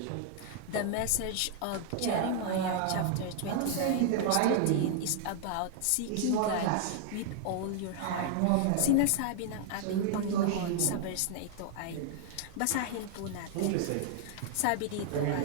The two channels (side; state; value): both; different; correlation -0.01